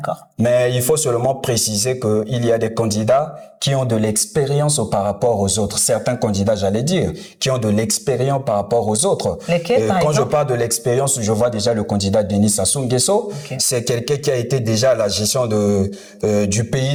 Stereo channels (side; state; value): both; identical; correlation 1.00